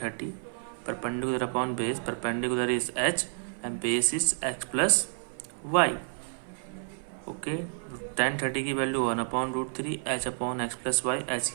perpendicular upon base, perpendicular is h and base is x plus Y. Okay, 10 30 की value 1/√3 h upon x plus Y, h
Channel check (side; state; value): left; silent; 56 dB below the other